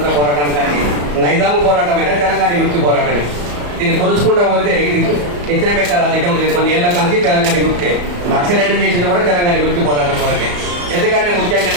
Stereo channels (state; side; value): late; left; 34 ms